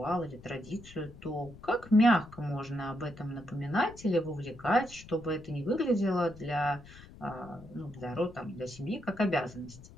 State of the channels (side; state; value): left; noise; rumble, 19 dB below the sound